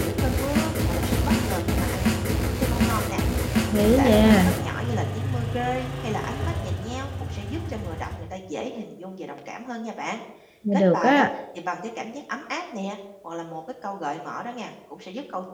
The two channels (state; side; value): identical; both; correlation 1.00